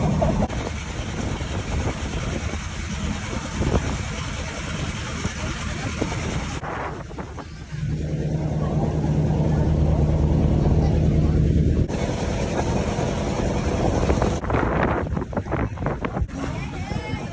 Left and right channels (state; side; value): identical; both; correlation 1.00